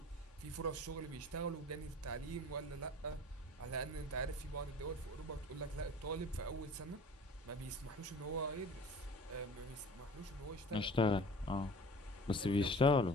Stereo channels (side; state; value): both; normal; correlation 0.44